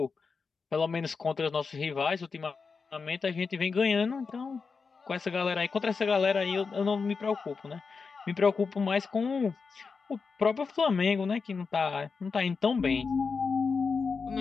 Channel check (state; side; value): quieter; right; 5.0 dB